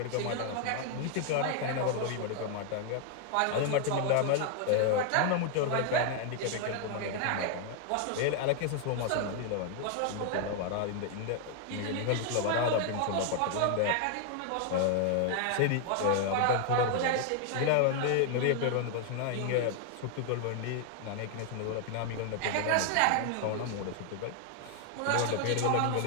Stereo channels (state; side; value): different; both; correlation 0.00